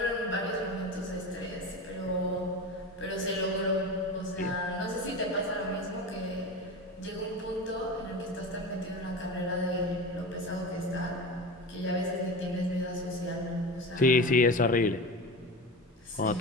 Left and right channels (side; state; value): both; normal; correlation 0.27